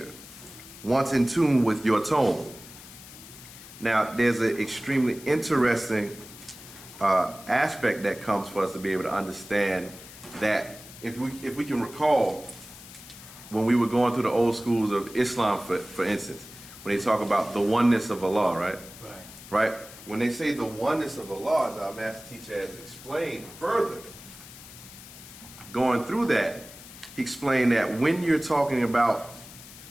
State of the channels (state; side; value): noise; left; hiss, 17 dB below the sound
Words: once in tune with your tone. Now, there's an extremely interesting aspect that comes for us to be able to understand that if we can recall when we were going through the old schools of Islam, for instance, when they talk about the oneness of Allah, right? Right. Right? When they say the oneness of Allah, as our master teacher has explained further, going through that, he explained that when you're talking about